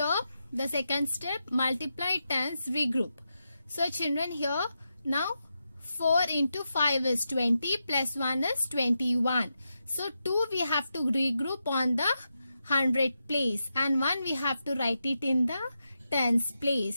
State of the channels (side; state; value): both; inverted; correlation -0.87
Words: the second step, multiply tens, regroup. So children, here now 4 into 5 is 20 plus 1 is 21. So 2 we have to regroup on the 100 place, and 1 we have to write it in the tens